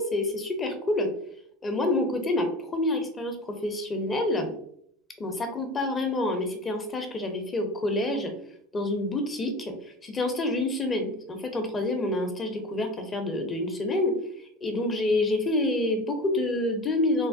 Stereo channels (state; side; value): normal; both; correlation 0.34